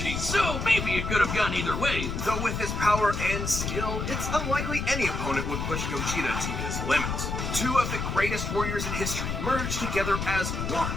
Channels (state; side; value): noise; left; rumble, 3 dB below the sound